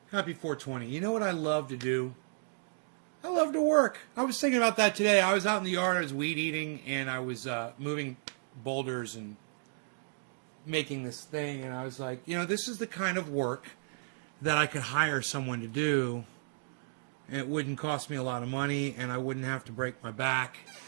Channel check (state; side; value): silent; left; digital silence